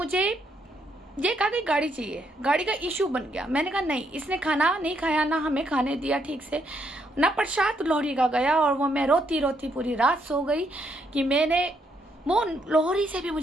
ये कहा कि गाड़ी चाहिए, गाड़ी का इशू बन गया। मैंने कहा नहीं, इसने खाना नहीं खाया, ना हमें खाने दिया ठीक से, ना प्रसाद लोहड़ी का गया। और वो मैं रोती रोती पूरी रात सो गई कि मैंने वो लोहड़ी से भी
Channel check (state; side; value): normal; both; correlation 0.75